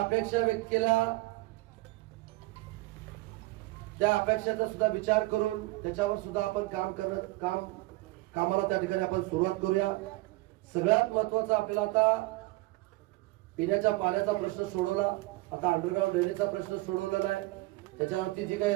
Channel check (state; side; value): quieter; left; 21.1 dB